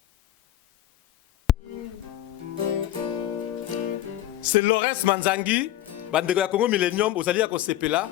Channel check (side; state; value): right; quieter; 13.3 dB